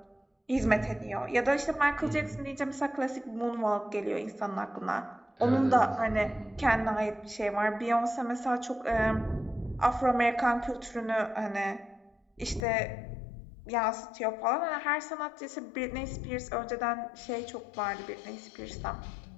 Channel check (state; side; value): drops out; right; at 12.7 s